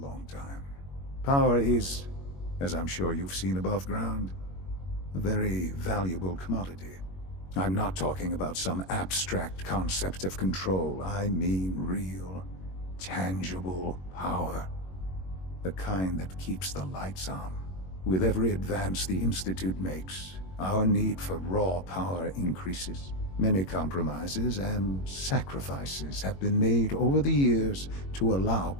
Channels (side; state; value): right; late; 21 ms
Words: time. Power is, as I'm sure you've seen above ground, a very valuable commodity. I'm not talking about some abstract concept of control. I mean real, tangible power. The kind that keeps the lights on. With every advance the Institute makes, our need for raw power increases. Many compromises and sacrifices have been made over the years to allow